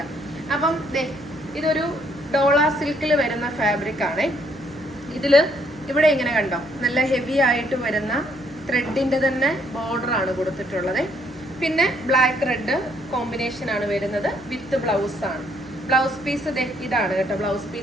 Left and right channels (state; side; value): noise; right; hum, 25 dB below the sound